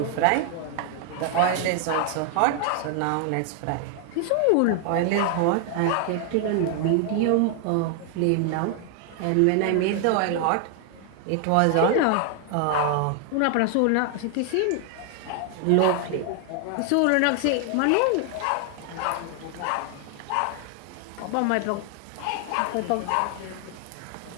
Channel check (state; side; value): different; both; correlation 0.00